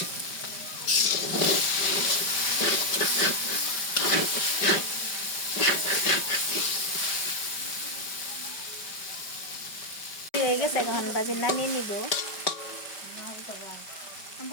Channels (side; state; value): right; late; 5.2 ms